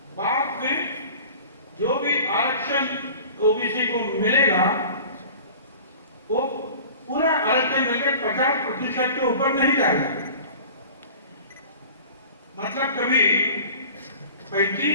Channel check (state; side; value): inverted; both; correlation -0.42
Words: बाद में जो भी आरक्षण ओबीसी को मिलेगा वो पूरा आरक्षण मिलकर 50% के ऊपर नहीं जाएगा। मतलब कभी